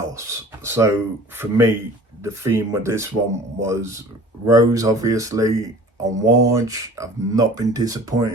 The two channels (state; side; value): normal; both; correlation 0.46